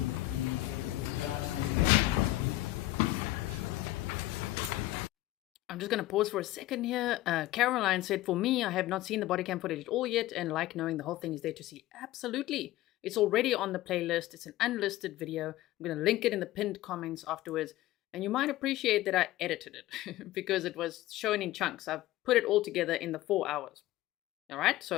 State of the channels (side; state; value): right; quieter; 16.1 dB